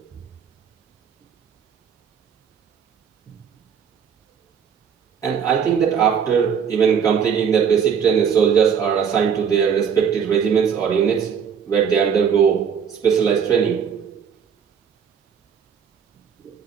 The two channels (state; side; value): quieter; left; 7.2 dB